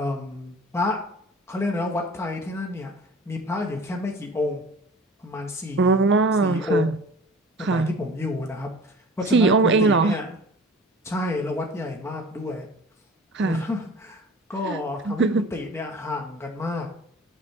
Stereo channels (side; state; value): both; normal; correlation 0.41